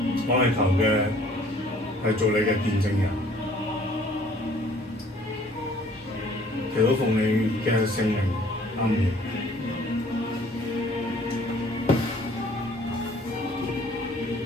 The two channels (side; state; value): both; normal; correlation 0.56